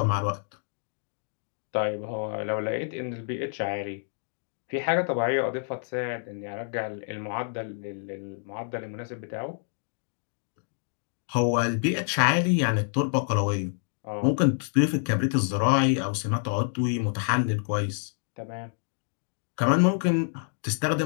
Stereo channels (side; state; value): right; silent; digital silence